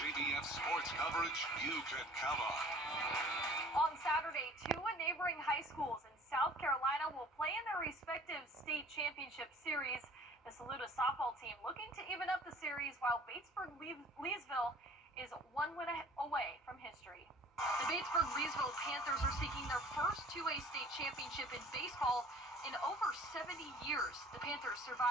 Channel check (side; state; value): both; normal; correlation 0.50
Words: sports coverage you can count on. On Saturday, two neighboring high schools in South Carolina will play in their respective state championship series. The Saluda softball team looking to even up the series, while Batesburg-Leesville is one win away from history. The Batesburg-Leesville Panthers are seeking their first 2A state championship in baseball in over 70 years. The Panthers